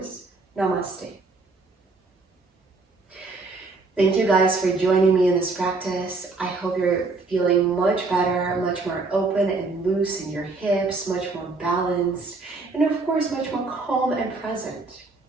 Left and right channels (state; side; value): quieter; left; 3.7 dB